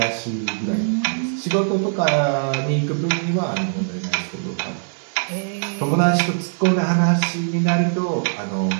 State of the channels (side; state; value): left; silent; digital silence